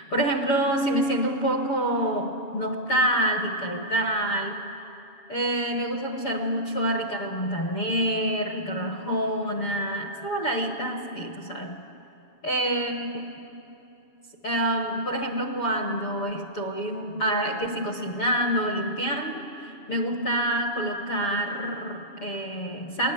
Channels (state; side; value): late; right; 7.1 ms